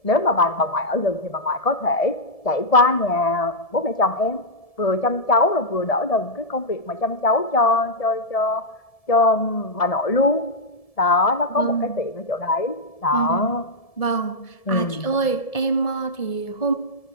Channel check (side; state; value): right; late; 1.7 ms